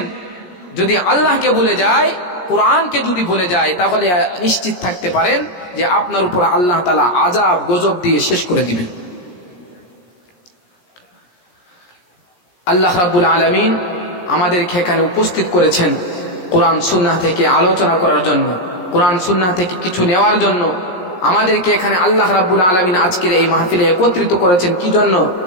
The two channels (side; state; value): right; late; 17 ms